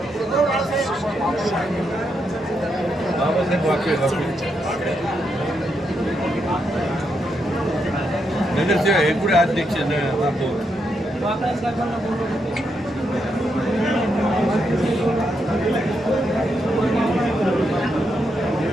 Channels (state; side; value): normal; both; correlation 0.81